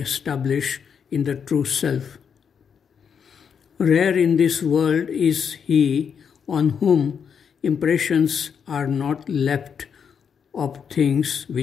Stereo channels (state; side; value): quieter; right; 7.1 dB